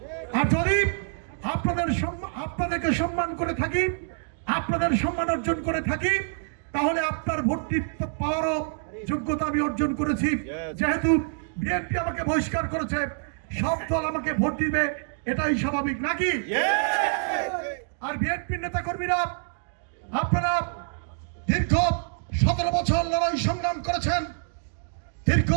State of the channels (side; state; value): left; silent; digital silence